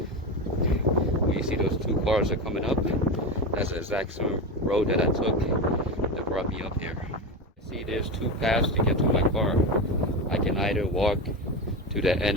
you see those two cars are coming up, that's the exact same road that I took that brought me up here. See, there's two paths to get to my car. I can either walk to the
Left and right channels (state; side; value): normal; both; correlation 0.19